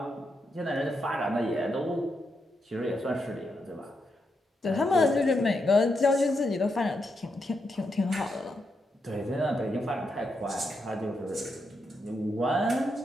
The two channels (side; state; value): both; normal; correlation 0.83